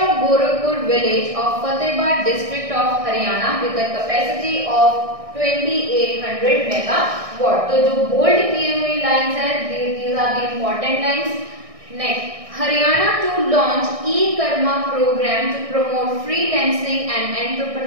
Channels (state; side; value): late; left; 1.6 ms